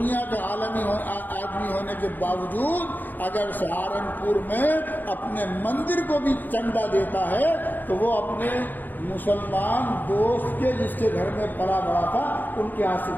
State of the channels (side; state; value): right; late; 0.086 ms